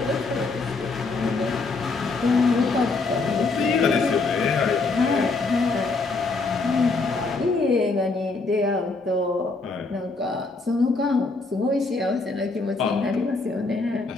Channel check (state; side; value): quieter; right; 3.8 dB